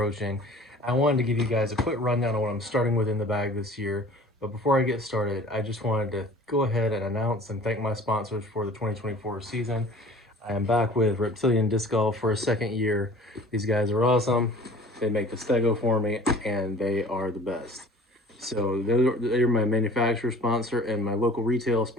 I wanted to give you guys a quick rundown on what I'm starting with in the bag this year, but before I get started, I just wanted to go ahead and announce and thank my sponsors for the 2024 season. I am back with Reptilian Disc Golf for a second year. These guys are awesome. They make the Stego for me, and they are the best. So they're my manufacturer sponsor, and my local retail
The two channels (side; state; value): both; normal; correlation 0.47